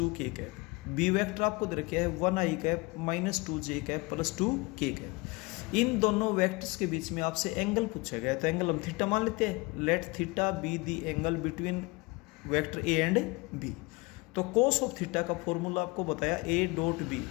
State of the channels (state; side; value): quieter; right; 25.1 dB